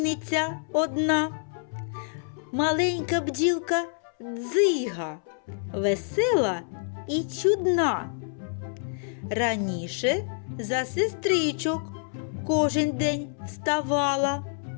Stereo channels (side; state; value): right; silent; 60 dB below the other